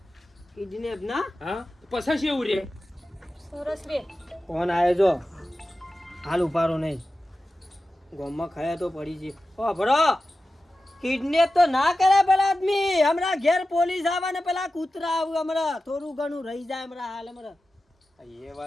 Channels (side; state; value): both; normal; correlation 0.94